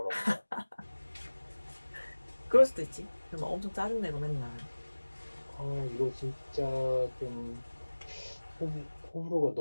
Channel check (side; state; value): both; inverted; correlation -1.00